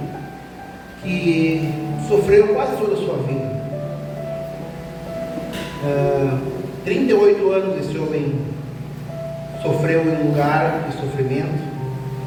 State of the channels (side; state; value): both; identical; correlation 1.00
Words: que sofreu quase toda a sua vida. 38 anos esse homem sofreu em um lugar de sofrimento,